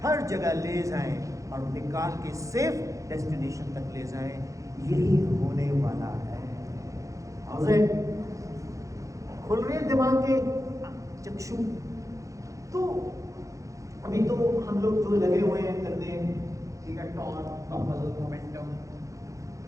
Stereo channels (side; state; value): left; late; 0.15 ms